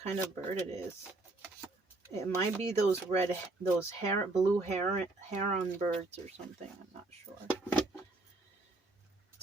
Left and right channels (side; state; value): left; quieter; 3.1 dB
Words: kind of bird it is. It might be those blue heron birds or something. I'm not sure.